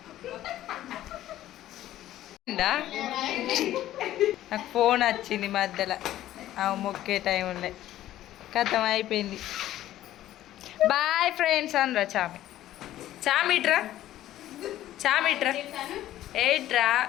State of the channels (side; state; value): right; quieter; 13.5 dB